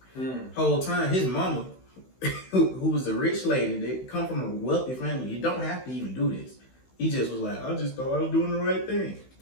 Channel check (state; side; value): late; right; 16 ms